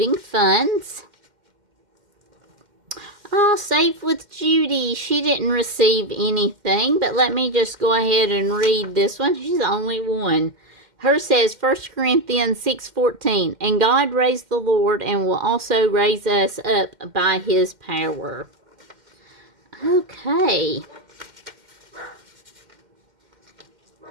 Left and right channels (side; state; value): left; late; 2.1 ms